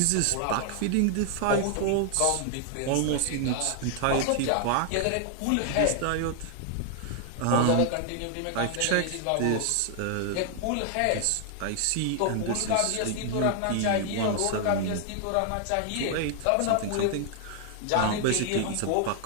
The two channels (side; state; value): both; different; correlation 0.00